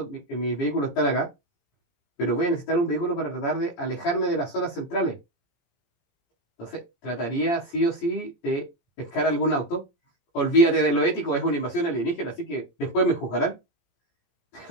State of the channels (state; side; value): late; right; 17 ms